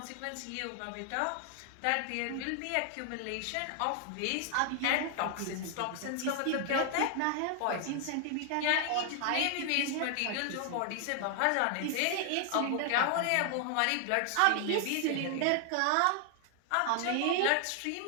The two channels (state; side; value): different; both; correlation 0.00